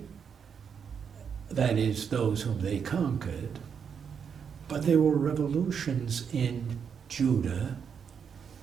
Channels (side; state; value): left; quieter; 6.9 dB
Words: that is, those whom they conquered, but there were revolutions in Judah,